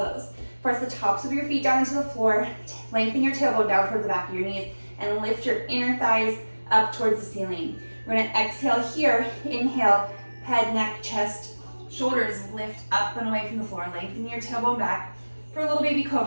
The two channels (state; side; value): inverted; both; correlation -1.00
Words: Press the tops of your feet down into the floor, lengthen your tailbone down towards the back of your knees, and lift your inner thighs up towards the ceiling. We're gonna exhale here, inhale, head, neck, chest, shoulders lift up and away from the floor, lengthen your tailbone back for a little baby